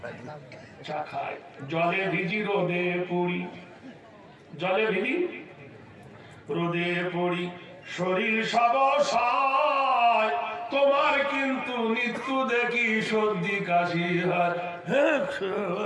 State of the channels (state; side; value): identical; both; correlation 1.00